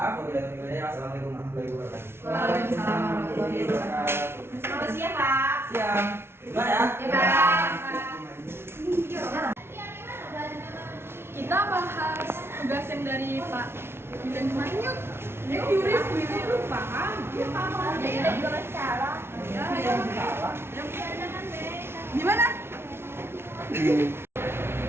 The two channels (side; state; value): left; late; 0.12 ms